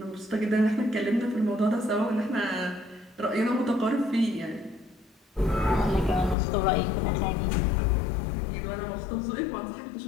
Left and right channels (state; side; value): drops out; right; at 6.4 s